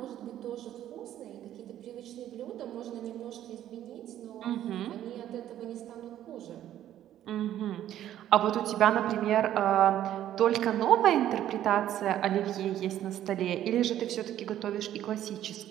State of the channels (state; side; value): quieter; left; 11.9 dB